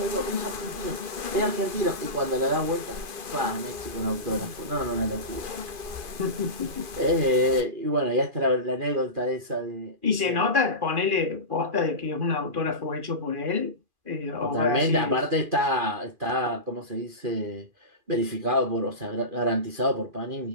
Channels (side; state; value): left; late; 2.4 ms